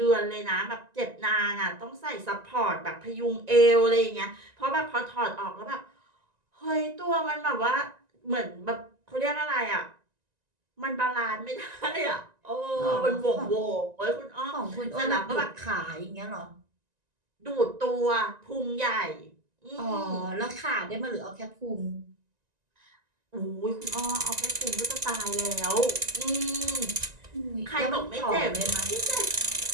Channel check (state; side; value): late; left; 1.9 ms